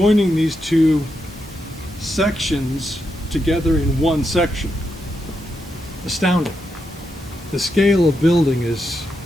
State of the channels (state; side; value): normal; both; correlation 0.84